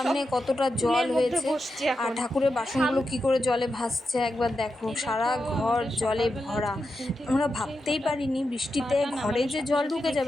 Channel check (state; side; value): normal; both; correlation 0.88